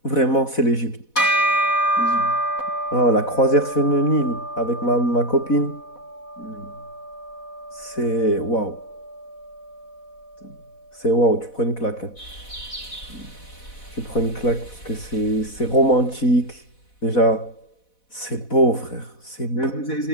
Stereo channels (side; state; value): right; late; 4.1 ms